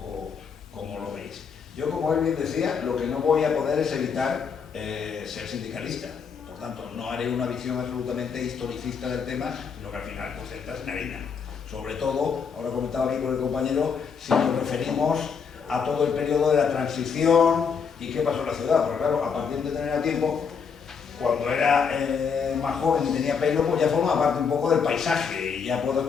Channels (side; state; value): right; quieter; 6.2 dB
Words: cómo lo veis. Yo, como él bien decía, lo que no voy a poder es evitar ser sindicalista. Por tanto, no haré una visión absolutamente historicista del tema, sino que al final pues entras en harina. Sobre todo, ahora comentaba aquí con el compañero, si nos referimos a todo el periodo de la transición y qué pasó en la ciudad. Porque claro, a partir de tener tiempo, cuando era más joven y tenía pelo, pues ya formaba parte un poco del paisaje y ya puedo